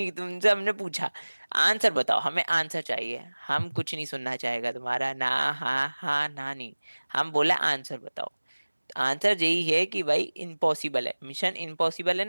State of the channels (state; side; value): inverted; both; correlation -1.00